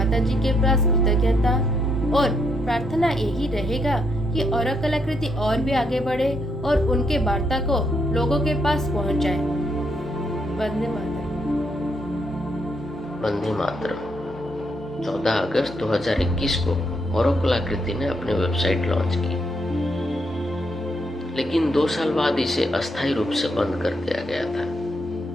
जी के पास कृतज्ञता और प्रार्थना यही रहेगा कि अरब कलाकृति और भी आगे बढ़े और उनके वार्ता को लोगों के पास पहुंचाए। वंदे मातरम। वंदे मातरम। 14 अगस्त 2021 को अरब कलाकृति ने अपनी वेबसाइट लॉन्च की, लेकिन 2 साल बाद इसे अस्थायी रूप से बंद कर दिया गया था।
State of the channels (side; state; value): both; normal; correlation 0.76